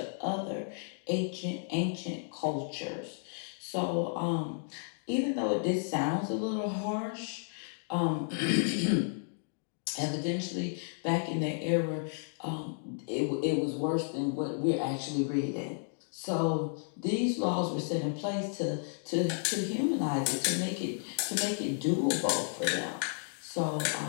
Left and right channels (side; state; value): right; silent; digital silence